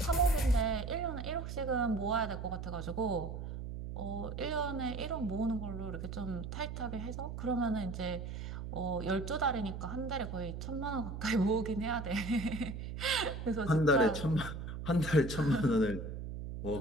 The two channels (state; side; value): noise; right; hum, 7 dB below the sound